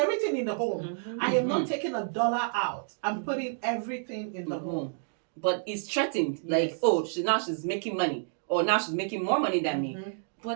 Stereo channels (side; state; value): left; silent; digital silence